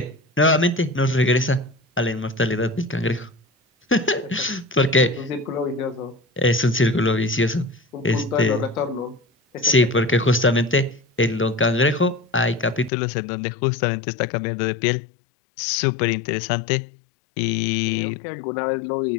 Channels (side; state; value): right; drops out; at 12.9 s